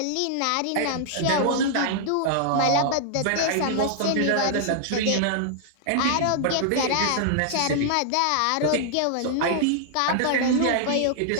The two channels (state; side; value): different; both; correlation -0.01